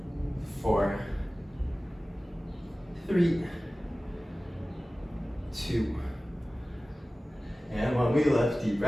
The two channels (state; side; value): normal; both; correlation 0.97